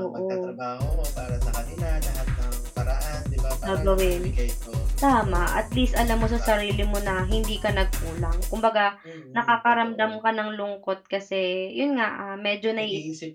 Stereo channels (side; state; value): both; identical; correlation 1.00